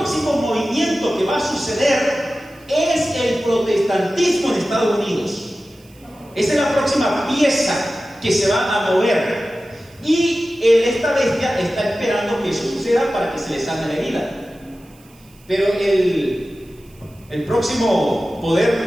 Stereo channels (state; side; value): noise; right; hiss, 29 dB below the sound